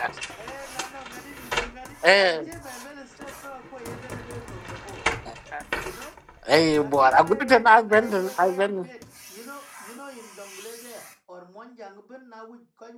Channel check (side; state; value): both; identical; correlation 1.00